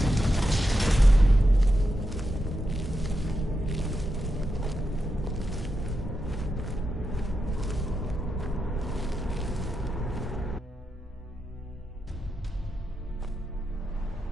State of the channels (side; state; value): both; normal; correlation 0.87